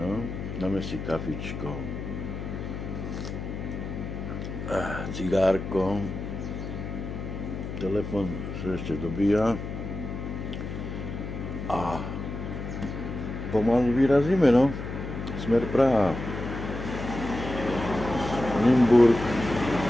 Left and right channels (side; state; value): left; noise; hum, 6 dB below the sound